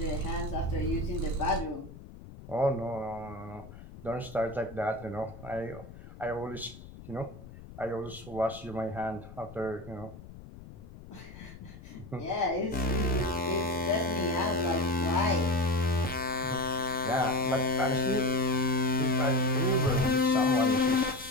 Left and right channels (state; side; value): noise; left; rumble, 16 dB below the sound